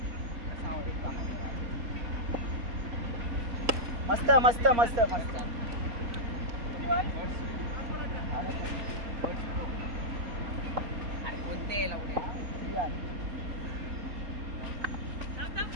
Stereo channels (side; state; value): left; late; 4.3 ms